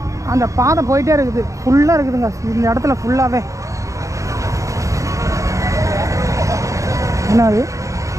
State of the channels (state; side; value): late; left; 0.15 ms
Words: அந்த பாதை போயிட்டே இருக்குது. ஃபுல்லாக இருக்குதுங்க இந்த இடத்துல ஃபுல்லாகவே. என்னது